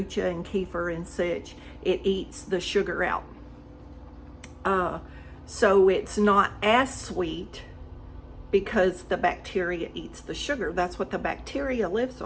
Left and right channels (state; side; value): identical; both; correlation 1.00